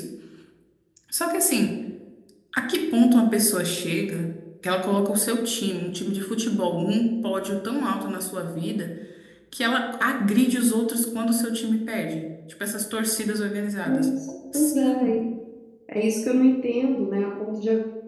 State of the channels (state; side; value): identical; both; correlation 1.00